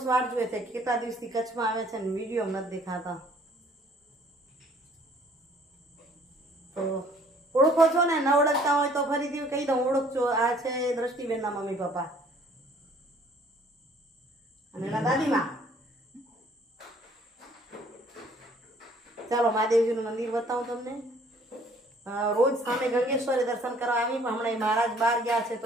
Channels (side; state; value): both; normal; correlation 0.58